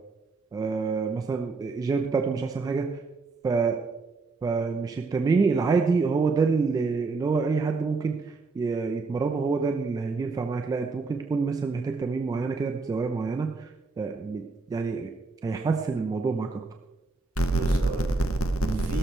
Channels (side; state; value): left; quieter; 3.9 dB